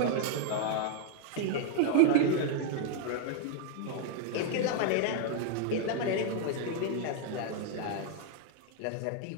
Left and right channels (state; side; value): different; both; correlation 0.00